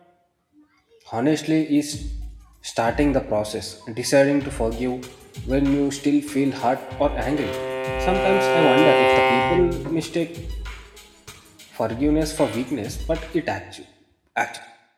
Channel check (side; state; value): both; identical; correlation 1.00